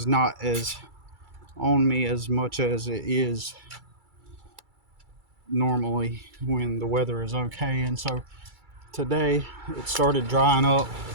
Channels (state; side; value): late; left; 2.3 ms